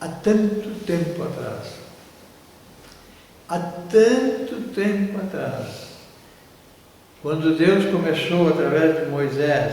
há tanto tempo atrás. Há tanto tempo atrás, quando Deus começou através de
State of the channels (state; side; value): identical; both; correlation 1.00